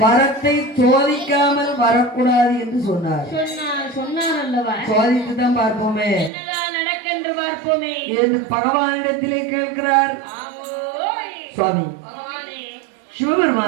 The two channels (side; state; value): left; drops out; at 6.3 s